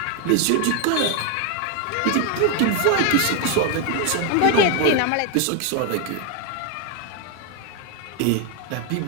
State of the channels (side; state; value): both; different; correlation 0.01